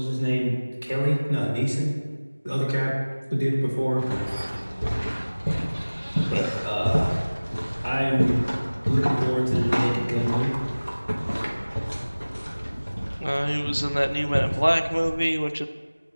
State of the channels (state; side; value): inverted; both; correlation -1.00